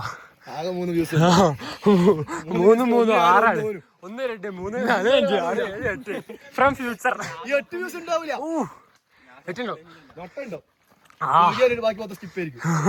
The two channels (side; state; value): both; identical; correlation 1.00